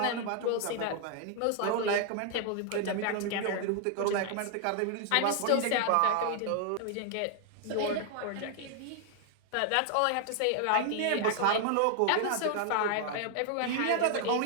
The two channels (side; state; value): both; different; correlation 0.00